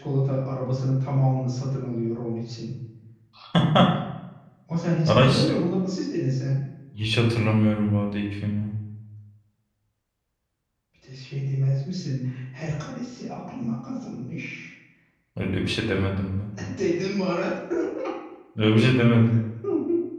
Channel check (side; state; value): both; identical; correlation 1.00